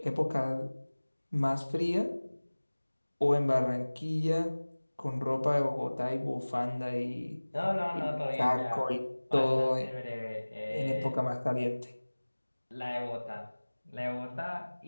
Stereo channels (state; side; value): inverted; both; correlation -1.00